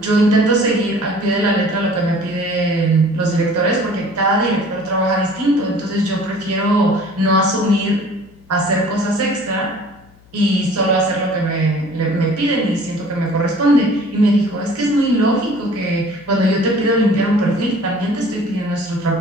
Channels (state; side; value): noise; left; hum, 27 dB below the sound